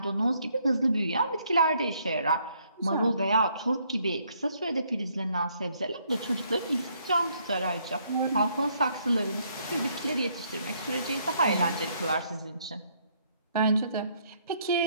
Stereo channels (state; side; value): inverted; both; correlation -0.69